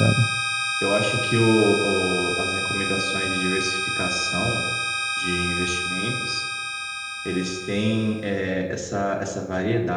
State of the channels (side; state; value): both; identical; correlation 1.00